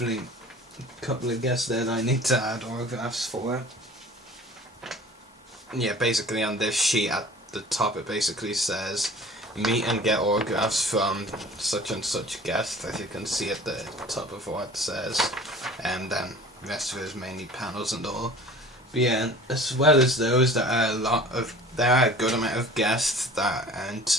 a couple of guests there that I need to add autographs for. Yeah, basically on this sheet at the top it basically says meet and get autographs from such and such guest, as you can see at the top of what it says, and then the rest of it is mainly panels and all. But yeah, as well as those, there are a good amount of guests that aren't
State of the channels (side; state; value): both; normal; correlation 0.44